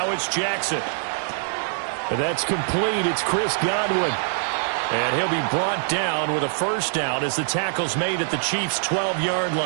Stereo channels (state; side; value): silent; left; 63 dB below the other